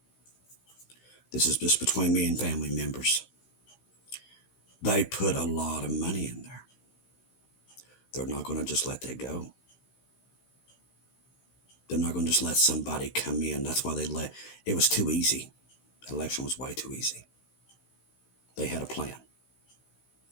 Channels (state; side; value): late; right; 16 ms